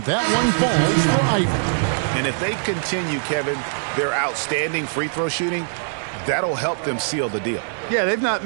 that one falls for Ivy. And if they continue, Kevin, their outstanding free throw shooting, that'll help them seal the deal. Yeah, they've not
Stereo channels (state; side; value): silent; left; digital silence